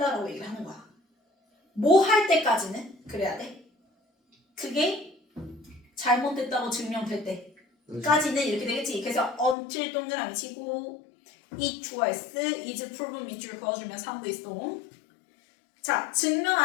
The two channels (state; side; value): drops out; right; at 9.6 s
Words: 얘기를 하는 거야. 뭐 할 때까지는 그래야 돼. 그게 잘못됐다고 증명될 때까지는 이렇게 되겠지. 그래서 until 동그라미 치고 it was, is proven 밑줄 그어주면 3부 있어. 자, 증명